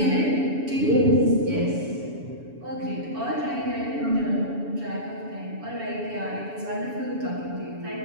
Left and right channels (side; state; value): left; late; 7.1 ms